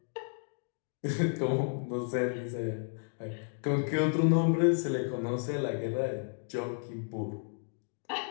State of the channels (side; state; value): right; silent; 56 dB below the other